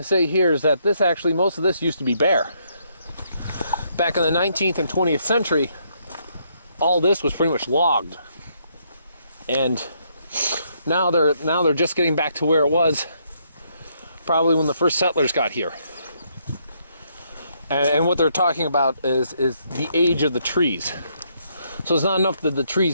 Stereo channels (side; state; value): both; inverted; correlation -0.73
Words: that this actually, most of this used to be bare. Back in the 19th and 20th century, all this was pretty much logged. And now they're just getting back to where it was probably when the first settlers got here. And what they're talking about is the age of the trees. So it's not enough that the